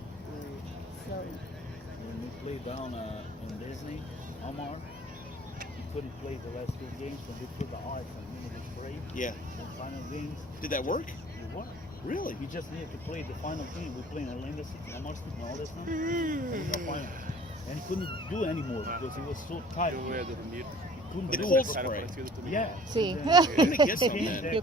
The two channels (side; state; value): both; normal; correlation 0.50